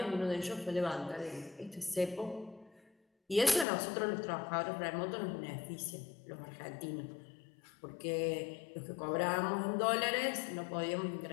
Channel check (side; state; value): right; drops out; at 3.7 s